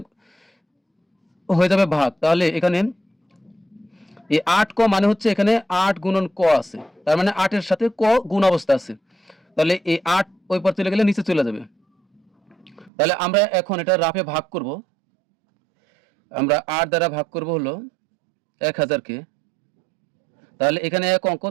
হয়ে যাবে ভাগ। তাহলে এখানে এই 8 ক মানে হচ্ছে এখানে 8 গুণন ক আছে, তার মানে 8 এর সাথে ক গুণ অবস্থা আছে। তাহলে এই 8 ওই পার চলে গেলে নিচে চলে যাবে। তাহলে আমরা এখন এটা রাফে ভাগ করব। আমরা 8 দ্বারা ভাগ করব হলো 1000 কে। তাহলে এখানে এক অঙ্ক,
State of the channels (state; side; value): drops out; left; at 12.9 s